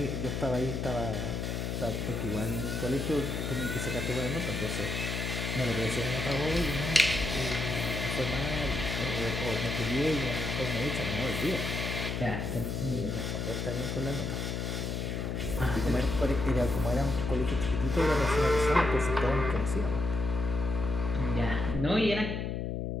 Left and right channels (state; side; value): noise; left; hum, 2 dB below the sound